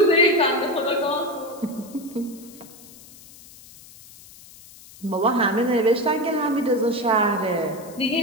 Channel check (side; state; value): left; noise; hiss, 21 dB below the sound